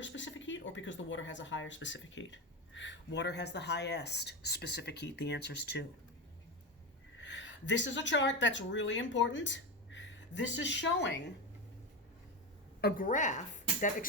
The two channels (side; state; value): both; normal; correlation 0.18